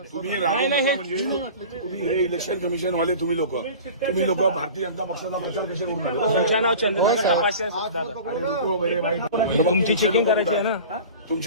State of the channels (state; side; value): inverted; both; correlation -0.38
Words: तुम्ही राहू नका म्हणजे तुम्ही हे इलेक्शन कमिशन वाले तुम्ही लोक भारतीय जनता पक्षाचा प्रचार कसे करून आले? तुमचं नाव चंद्रकांत तपासे तुमची चेकिंग करायची आहे ना.